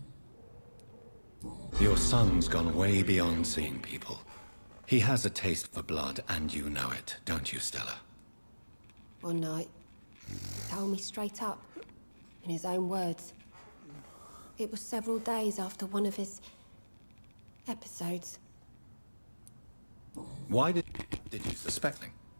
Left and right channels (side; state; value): both; inverted; correlation -1.00